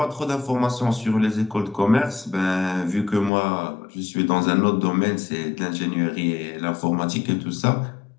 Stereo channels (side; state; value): right; drops out; at 3.3 s